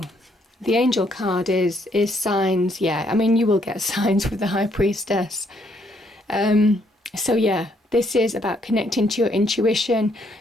the angel card is signs. Yeah, I mean, you will get signs with the High Priestess. So yeah, this is about connecting to your intuition.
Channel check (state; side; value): normal; both; correlation 0.71